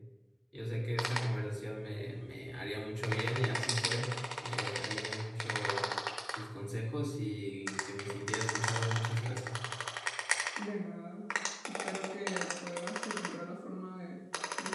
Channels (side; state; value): both; identical; correlation 1.00